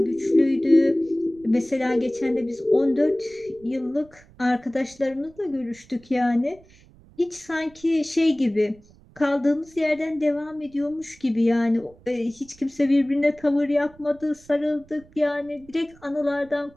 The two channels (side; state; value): right; noise; rumble, 26 dB below the sound